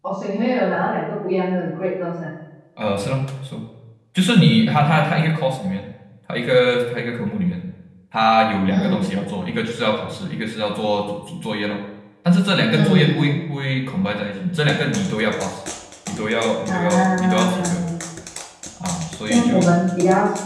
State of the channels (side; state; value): both; identical; correlation 1.00